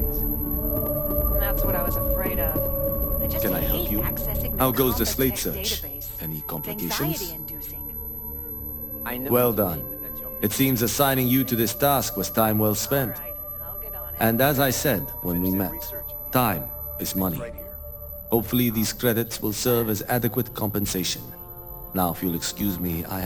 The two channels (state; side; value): identical; both; correlation 1.00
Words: That's what I was afraid of. I just Can I help hate you? accessing How the goes the Compass slate Tech search? database. Any It's complications? anxiety-inducing. I know Well what you done. mean, but you're- It seems assigning you to this task was time well spent. And as I said when we met, time is money. Hopefully these credits will serve as adequate compensation. Now, if you'll excuse me, I